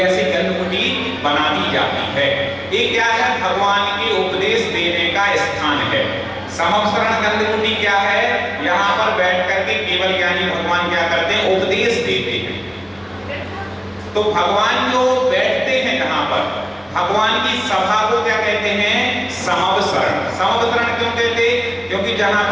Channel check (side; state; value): both; identical; correlation 1.00